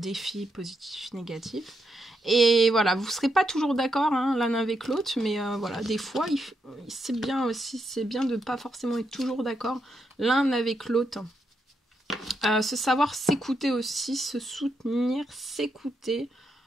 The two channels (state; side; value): normal; both; correlation 0.81